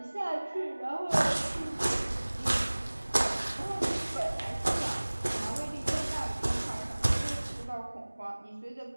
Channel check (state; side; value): inverted; both; correlation -1.00